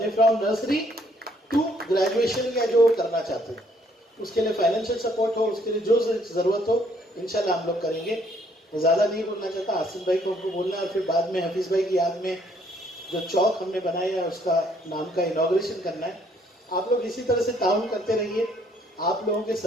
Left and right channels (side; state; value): both; normal; correlation 0.66